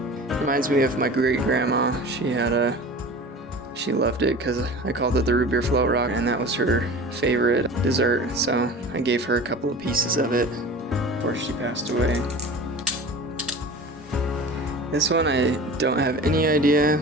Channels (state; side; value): normal; both; correlation 0.37